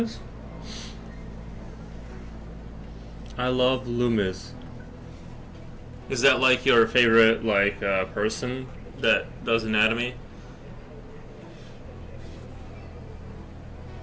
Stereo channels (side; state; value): both; identical; correlation 1.00